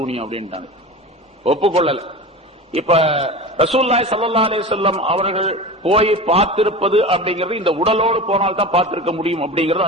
அப்படின்ட்டாங்க. ஒப்புக்கொள்ளல. இப்ப ரசூலுல்லாஹி ஸல்லல்லாஹு அலைஹி வஸல்லம் அவர்கள் போய் பார்த்திருப்பது அப்படிங்கிறது இந்த உடலோடு போனால் தான் பார்த்திருக்க முடியும் அப்படிங்கிறது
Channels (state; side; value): normal; both; correlation 0.31